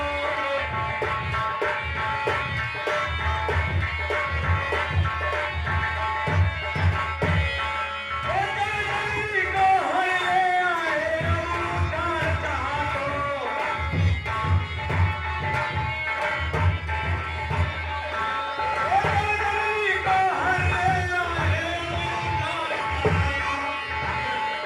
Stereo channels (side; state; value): both; identical; correlation 1.00